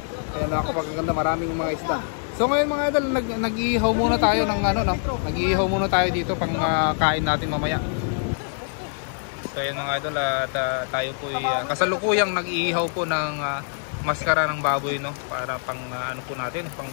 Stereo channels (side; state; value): right; silent; digital silence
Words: Ayan, napakaganda, maraming mga isda. So ngayon mga idol, nag-iihaw muna tayo ng nag-iihaw muna tayo dito pang kain natin mamaya. So ayan mga idol, at tayo po kasalukuyang nag-iihaw po ng maskara ng baboy, no? Para pang po natin, pang